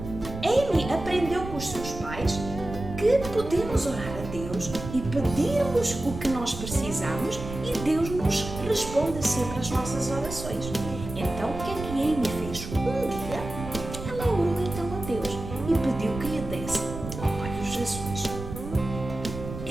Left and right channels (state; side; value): noise; right; rumble, 9 dB below the sound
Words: Amy aprendeu com os seus pais que podemos orar a Deus e pedirmos o que nós precisamos e Deus nos responde sempre às nossas orações. Então, o que é que Amy fez? Um dia, ela orou então a Deus e pediu que lhe desse olhos azuis.